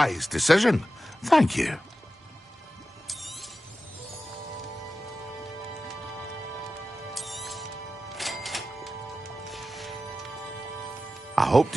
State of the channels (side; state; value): both; normal; correlation 0.93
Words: decision. Thank you. I hope